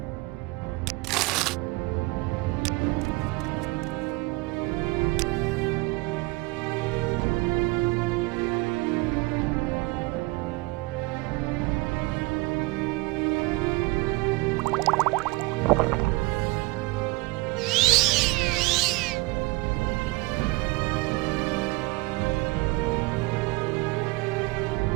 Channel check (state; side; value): quieter; left; 23.7 dB